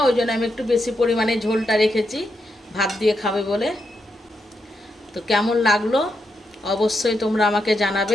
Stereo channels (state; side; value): normal; both; correlation 0.83